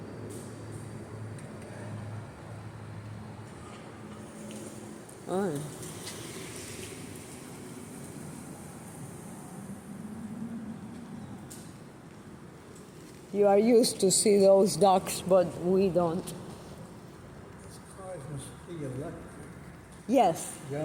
Oh. You are used to see those ducks, but we don't. This car must be electric. Yes,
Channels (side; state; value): both; identical; correlation 1.00